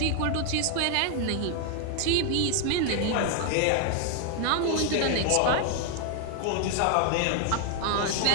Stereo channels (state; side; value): different; both; correlation 0.00